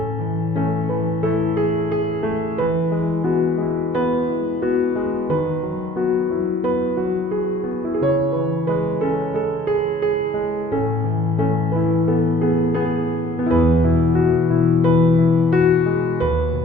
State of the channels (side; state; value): both; normal; correlation 0.55